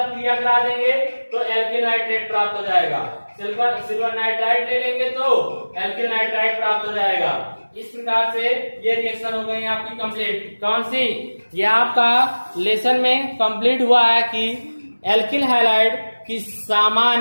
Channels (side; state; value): both; inverted; correlation -1.00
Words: क्रिया करा देंगे तो एल्किल नाइट्रेट प्राप्त हो जाएगा। सिल्वर नाइट्राइट ले लेंगे तो एल्किल नाइट्राइट प्राप्त हो जाएगा। इस प्रकार से ये रिएक्शन हो गई आपकी कंप्लीट। कौन सी? ये आपका लेसन में कंप्लीट हुआ है कि एल्किल हैलाइड की